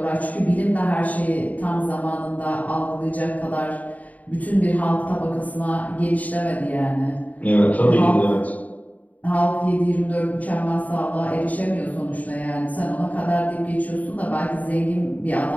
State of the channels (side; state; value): right; late; 0.073 ms